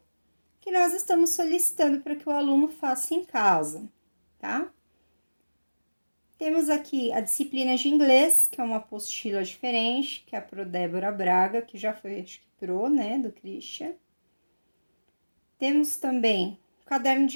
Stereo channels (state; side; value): inverted; both; correlation -1.00